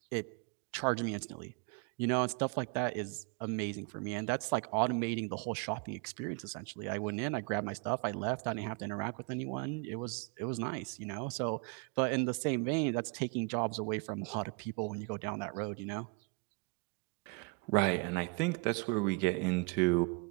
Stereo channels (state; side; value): quieter; left; 30.7 dB